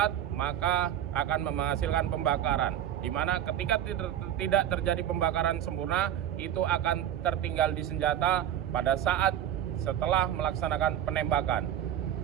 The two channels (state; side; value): quieter; left; 10.9 dB